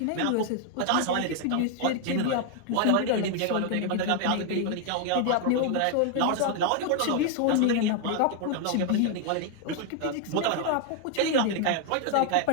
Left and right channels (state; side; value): different; both; correlation 0.00